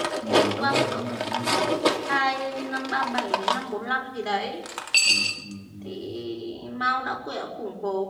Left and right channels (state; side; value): identical; both; correlation 1.00